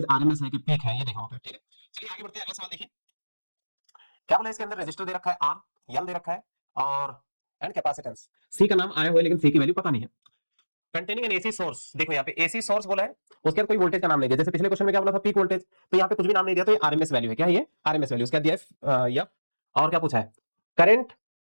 आरएमएस है कि पीक है, ये देखना होता है। ठीक है, चलिए आगे बढ़ते हैं, अगला सवाल देखिए। क्या बोला, इसके अंदर रेजिस्टर दे रखा है आर, एल दे रखा है और एंड कैपेसिटेंस। सी का नाम आया हुआ है लेकिन सी की वैल्यू पता नहीं है। कंटेनिंग एन एसी सोर्स, देखो यहाँ पे एसी सोर्स बोला है, उसके बाद कोई वोल्टेज का नाम नहीं दिया। जैसे पिछले क्वेश्चन में क्या बोला था, पीक वोल्टेज, तो यहाँ पे कुछ भी नाम नहीं दिया, तो ये आरएमएस वैल्यू है। क्या है ये, आरएमएस वैल्यू। उसके बाद दिया है या, और क्या पूछा है, करंट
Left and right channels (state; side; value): inverted; both; correlation -1.00